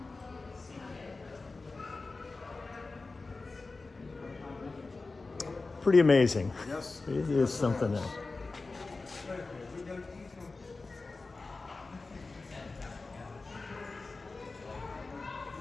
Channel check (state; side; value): quieter; right; 3.7 dB